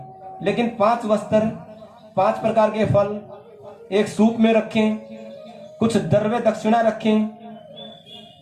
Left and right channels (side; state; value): both; identical; correlation 1.00